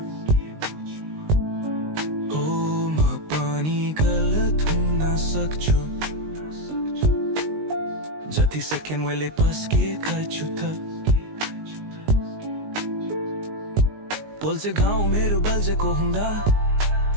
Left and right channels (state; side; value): late; left; 19 ms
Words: हो म पनि गलत हुन सक्छु जति सेकेन्ड वेले पस्केका छु त पोल्छ घाउ मेरो बल्झेको हुँदा